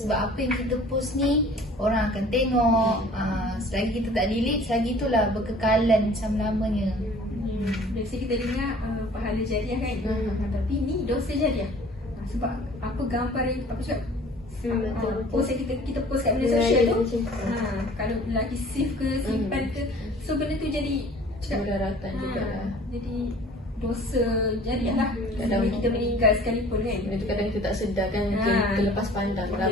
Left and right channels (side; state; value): both; normal; correlation 0.49